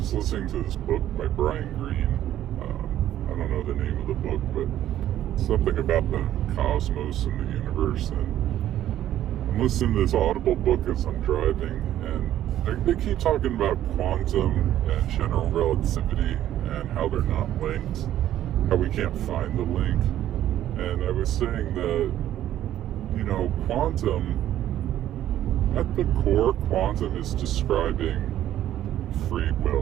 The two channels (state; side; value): quieter; left; 12.2 dB